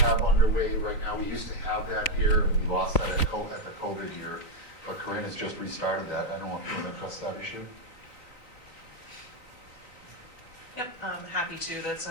underway right now. We used to have that here. We lost that at the COVID year, but Corinne has just restarted that. I don't want people to press that issue. Yep, I'm happy to. That's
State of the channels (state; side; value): late; right; 3.8 ms